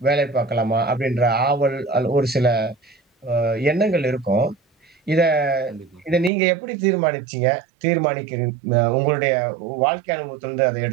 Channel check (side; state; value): left; drops out; at 6.3 s